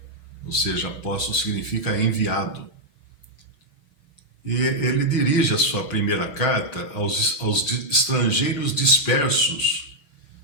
ou seja, apóstolo significa enviado. E ele dirige a sua primeira carta aos estrangeiros dispersos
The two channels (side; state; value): right; late; 6.7 ms